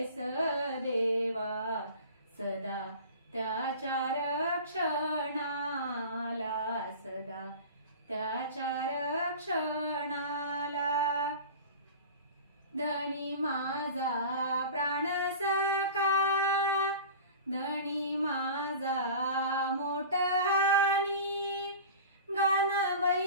देवा सदा त्याच्या रक्षणाला, सदा त्याच्या रक्षणाला, धनी माझा प्राण सखा, धनी माझा मोठहानी, गान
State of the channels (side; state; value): both; inverted; correlation -0.37